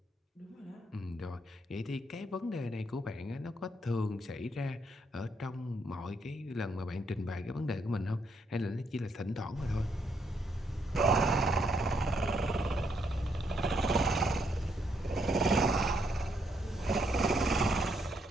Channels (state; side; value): normal; both; correlation 0.75